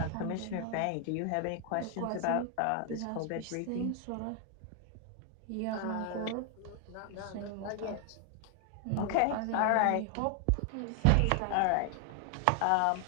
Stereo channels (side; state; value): both; different; correlation 0.00